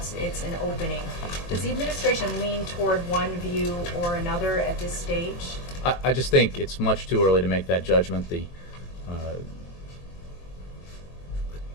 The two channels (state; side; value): late; right; 23 ms